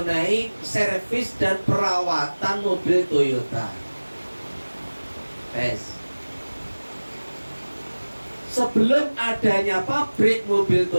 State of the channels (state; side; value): inverted; both; correlation -1.00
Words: servis dan perawatan mobil Toyota. Sebelum adanya pabrik mobil